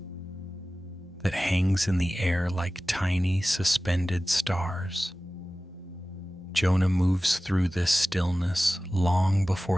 that hangs in the air like tiny, suspended stars. Jonah moves through this stillness long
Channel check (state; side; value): normal; both; correlation 0.96